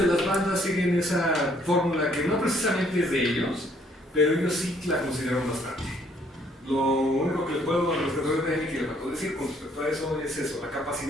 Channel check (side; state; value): both; normal; correlation 0.65